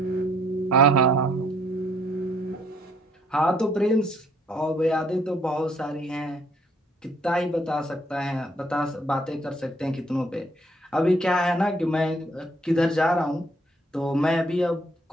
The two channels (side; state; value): both; normal; correlation 0.66